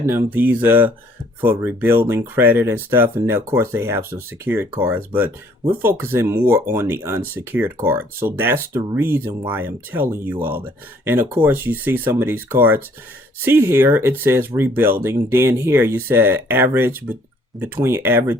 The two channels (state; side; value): normal; both; correlation 0.61